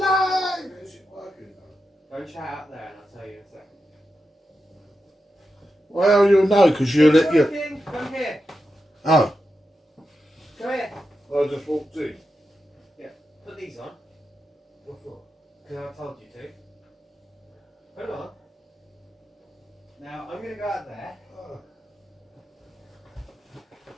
Is it working? Go and chat out there and I'll tell you in a second. Well, you'll know because you'll let you. Come here. Oh. Come here. I just walked in. Yeah. Put these on. What for? Because I told you to. Put them on. Now I'm going to go out there.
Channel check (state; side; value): normal; both; correlation 0.89